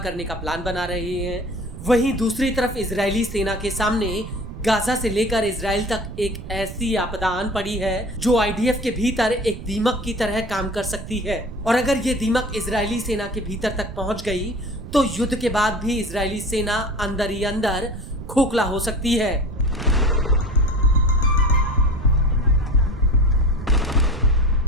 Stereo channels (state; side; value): noise; right; rumble, 11 dB below the sound